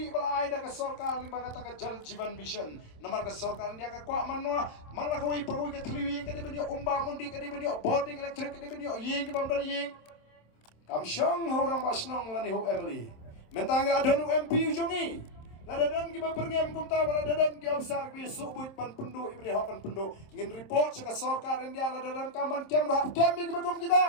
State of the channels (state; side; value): late; right; 26 ms